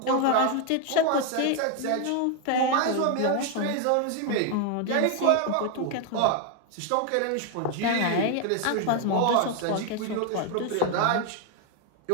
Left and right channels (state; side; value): different; both; correlation 0.01